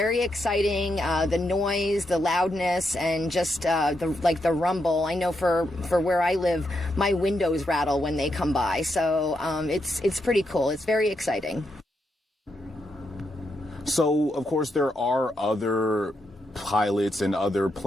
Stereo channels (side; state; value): both; normal; correlation 0.82